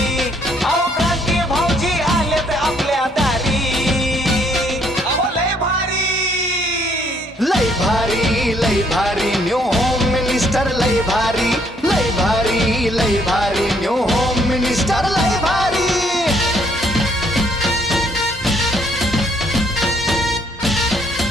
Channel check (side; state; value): both; normal; correlation 0.67